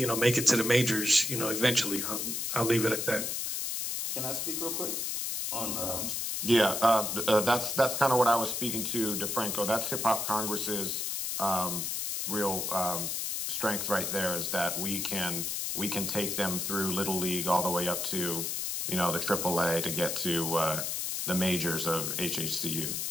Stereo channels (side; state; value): left; noise; hiss, 1 dB below the sound